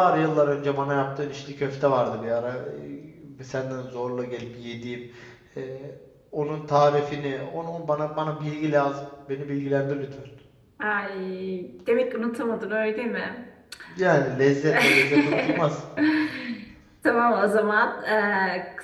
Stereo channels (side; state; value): both; identical; correlation 1.00